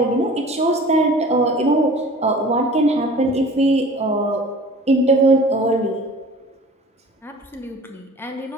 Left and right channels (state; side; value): normal; both; correlation 0.44